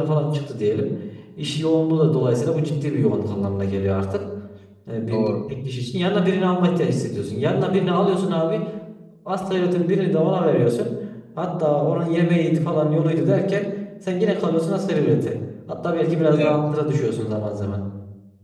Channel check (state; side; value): identical; both; correlation 1.00